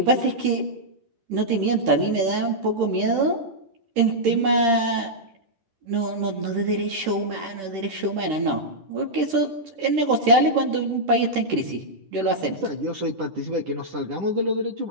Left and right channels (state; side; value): late; left; 10 ms